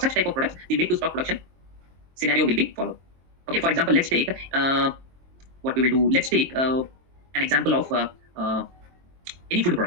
type of products, the make to stock production scenario will be followed. Okay, for example, let's take what we will do. Let's take an example of any food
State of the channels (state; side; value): late; left; 23 ms